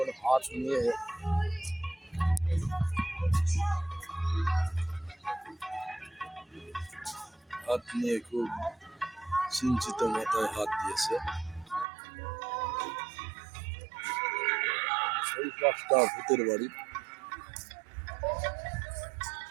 হাত নিয়ে খুব চিন্তিত মাথায় হাত দিয়েছে। সেই পাঁচটা ভূতের বাড়ি।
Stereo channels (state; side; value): drops out; left; at 11.9 s